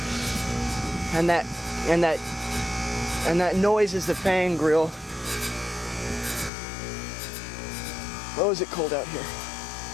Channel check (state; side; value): drops out; right; at 6.5 s